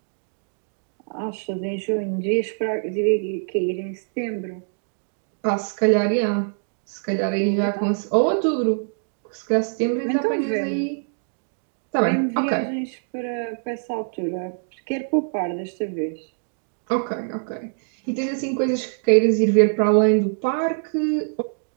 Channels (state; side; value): silent; left; digital silence